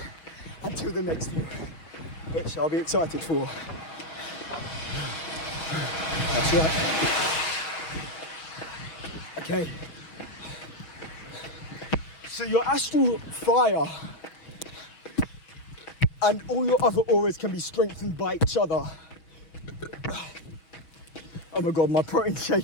Until the next year, which I'll be excited for. That's right. Okay. So your astral fire and all your other auras can be strengthened by each other. Oh my God, my protein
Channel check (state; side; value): late; right; 6.1 ms